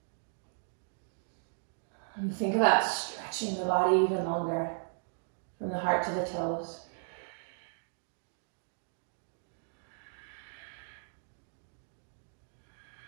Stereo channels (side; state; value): left; silent; digital silence